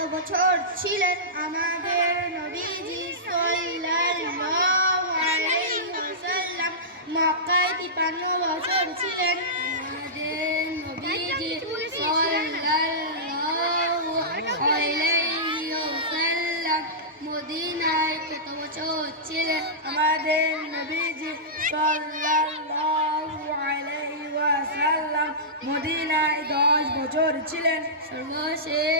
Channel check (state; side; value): normal; both; correlation -0.16